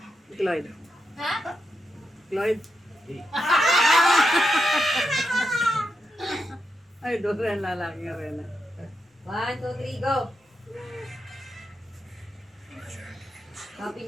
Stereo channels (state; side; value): normal; both; correlation 0.85